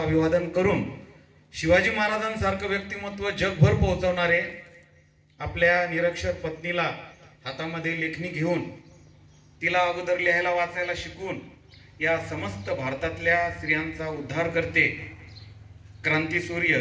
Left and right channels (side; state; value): both; identical; correlation 1.00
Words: करून शिवाजी महाराजांसारखं व्यक्तिमत्व जगभर पोहोचवणारे, आपल्या निरक्षर पत्नीला हातामध्ये लेखणी घेऊन तिला अगोदर लिहायला वाचायला शिकवून या समस्त भारतातल्या स्त्रियांचा उद्धार करते क्रांतीसूर्य